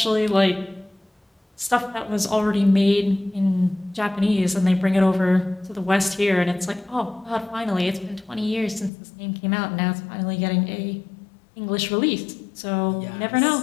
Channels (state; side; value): drops out; right; at 8.9 s